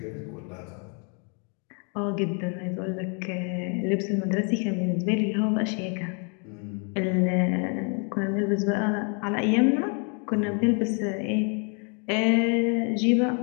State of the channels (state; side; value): quieter; right; 38.0 dB